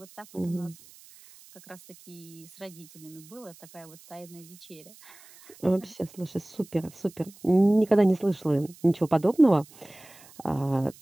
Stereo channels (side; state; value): right; noise; hiss, 23 dB below the sound